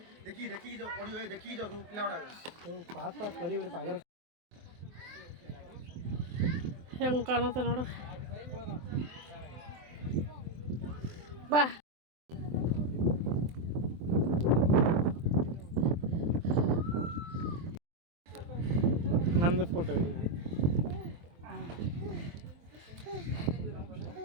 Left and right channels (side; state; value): left; late; 23 ms